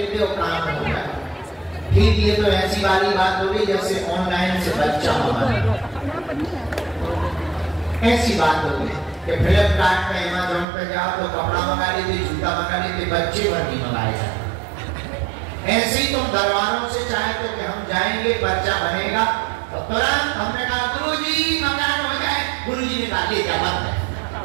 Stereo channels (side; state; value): left; drops out; at 10.7 s